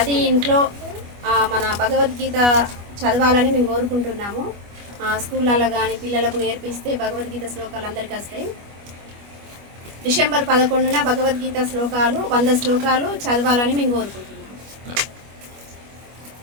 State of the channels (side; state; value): left; late; 25 ms